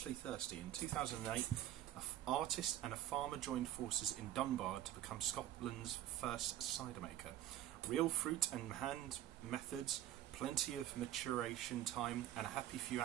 thirsty. In 2008, an artist and a farmer joined forces in Dunbar to become Scotland's first cider maker. Real fruit and hand methods, plenty of maturation time, and a happy few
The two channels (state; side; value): quieter; left; 12.8 dB